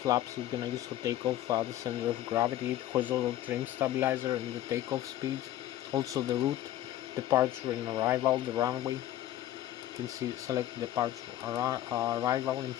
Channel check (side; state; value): right; quieter; 13.4 dB